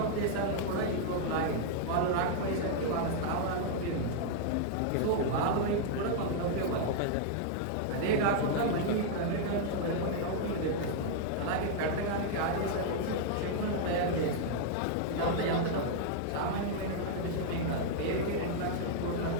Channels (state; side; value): different; both; correlation -0.01